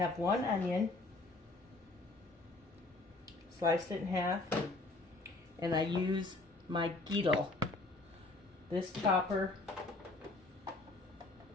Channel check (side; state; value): right; quieter; 3.2 dB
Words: 1 onion, sliced it in half, and I use my Geedle. This chopper